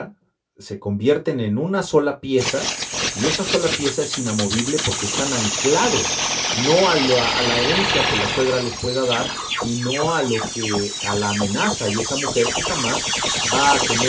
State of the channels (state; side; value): identical; both; correlation 1.00